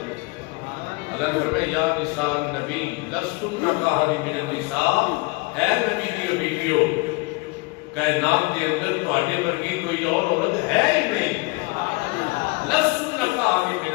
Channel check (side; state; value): right; quieter; 25.8 dB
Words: کو۔ اللہ نے فرمایا یا نساء نبی لستن کاہد من النساء، اے نبی دیو بیٹیو کائنات کے اندر تہاڈے ورگی کوئی اور عورت ہے ہی نہیں۔ لستن کاہد من